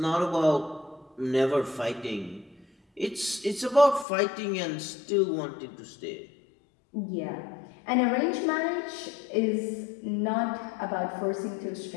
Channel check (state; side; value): drops out; right; at 4.0 s